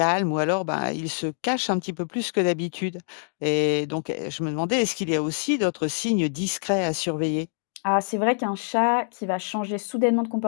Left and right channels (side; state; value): right; silent; digital silence